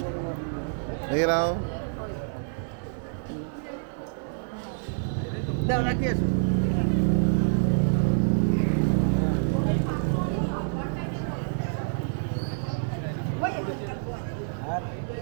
দেখে নাও দাও রাখি আসো।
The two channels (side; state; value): left; silent; 60 dB below the other